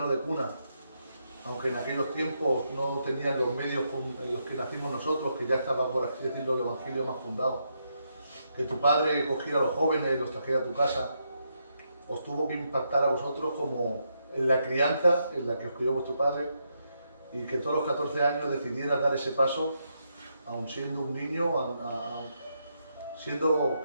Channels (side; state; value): both; inverted; correlation -0.80